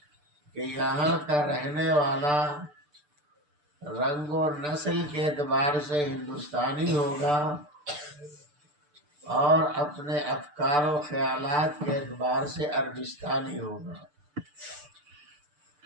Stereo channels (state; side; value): late; left; 6.8 ms